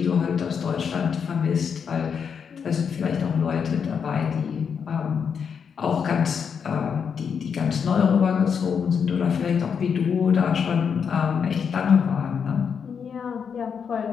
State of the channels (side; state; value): right; quieter; 6.8 dB